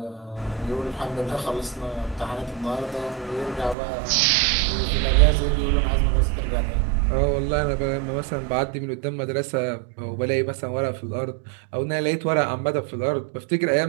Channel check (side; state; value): left; drops out; at 3.8 s